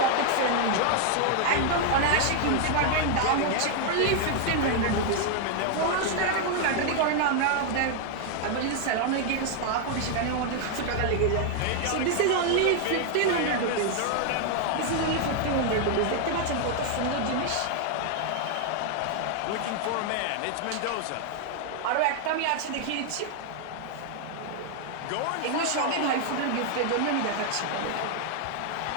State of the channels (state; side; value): different; both; correlation 0.00